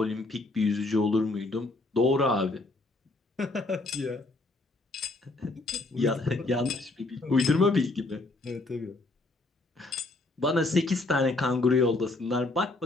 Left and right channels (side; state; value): right; quieter; 3.0 dB